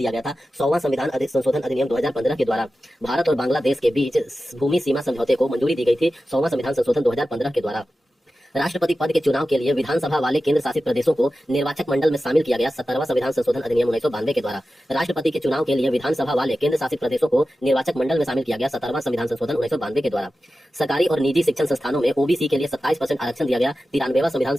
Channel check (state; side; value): normal; both; correlation 0.93